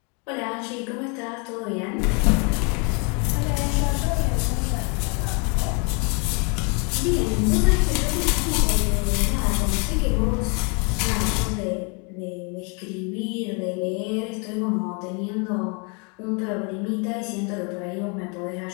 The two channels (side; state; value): right; quieter; 34.2 dB